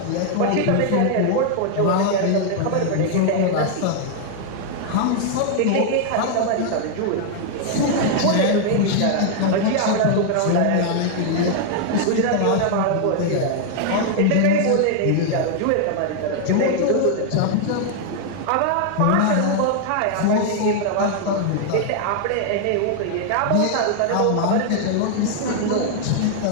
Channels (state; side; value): different; both; correlation 0.00